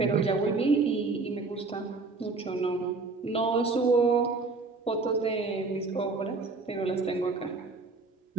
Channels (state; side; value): quieter; left; 4.0 dB